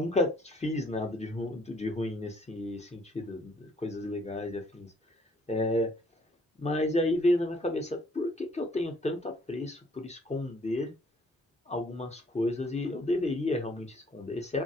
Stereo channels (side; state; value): both; normal; correlation 0.63